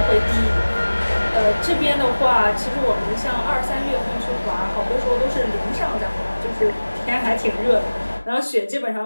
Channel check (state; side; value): inverted; both; correlation -1.00